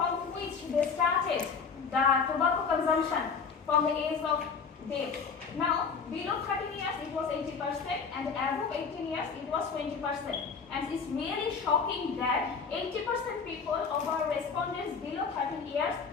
which they started the tobacco consumption from the age of death. Now, below 13 years it was 80%, and above 18 years it was 20%. And it's really shocking that 80% people of our respondents below 13 years,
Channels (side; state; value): right; quieter; 5.7 dB